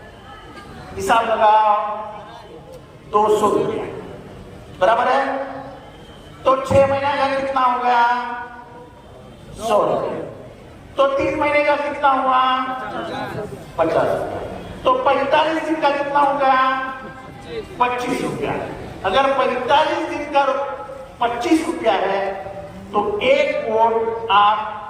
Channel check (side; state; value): both; identical; correlation 1.00